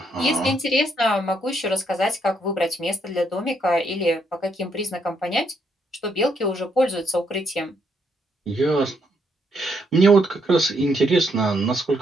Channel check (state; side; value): normal; both; correlation 0.74